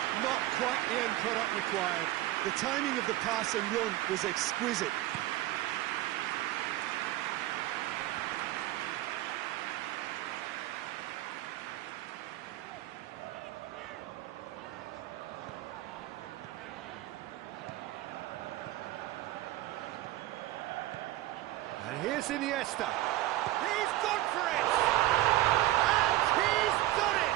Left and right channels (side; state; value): left; quieter; 16.0 dB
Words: not quite the end product required. The timing of the pass and run was exquisite. And here's Iniesta. He's gone for it! And he's done